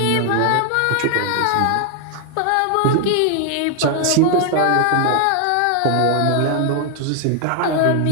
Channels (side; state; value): both; different; correlation 0.00